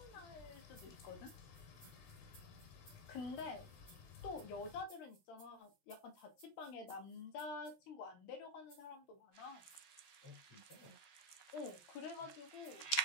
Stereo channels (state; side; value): late; right; 13 ms